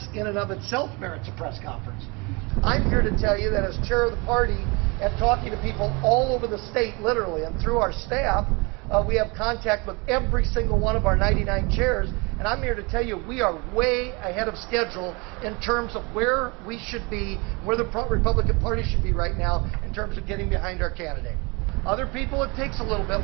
in and of itself merits a press conference. I'm here to tell you that as chair of the party and talking to people all over the state, literally, and through our staff, we have contact with every single one of our 99 chairs, and I'm here to tell you we are way ahead of schedule in terms of where we should be, where the Republican Party should be right now in terms of getting behind our candidate. Other people, it takes a little bit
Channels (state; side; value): quieter; left; 28.2 dB